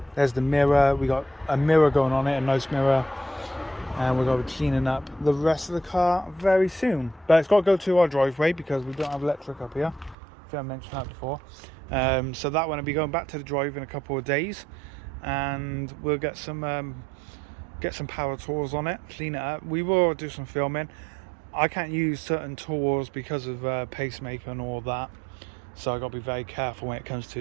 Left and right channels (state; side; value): drops out; left; at 10.2 s